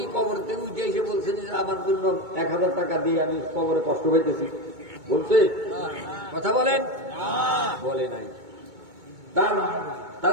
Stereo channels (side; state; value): left; late; 2.2 ms